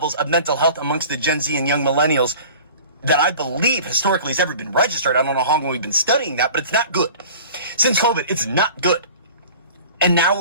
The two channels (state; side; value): inverted; both; correlation -0.42